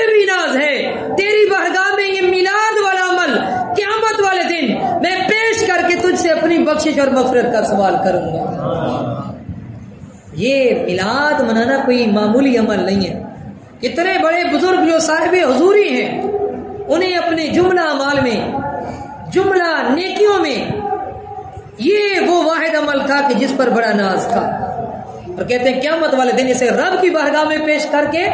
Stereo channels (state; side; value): identical; both; correlation 1.00